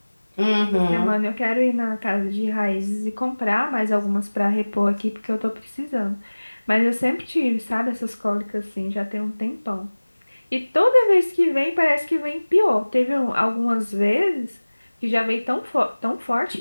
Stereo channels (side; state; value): both; inverted; correlation -1.00